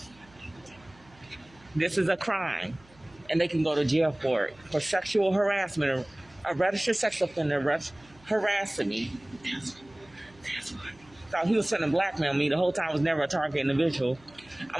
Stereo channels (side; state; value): right; noise; hum, 27 dB below the sound